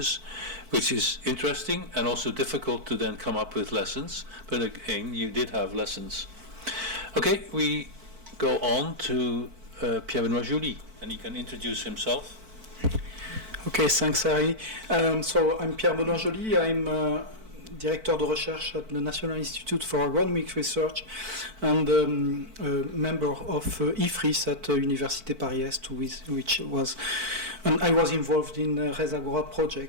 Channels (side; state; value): left; late; 4.5 ms